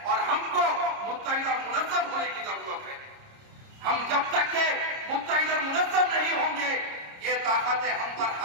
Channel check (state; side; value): late; left; 30 ms